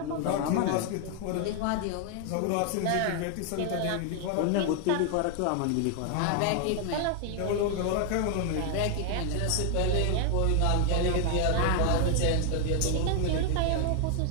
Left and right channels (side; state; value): both; different; correlation 0.00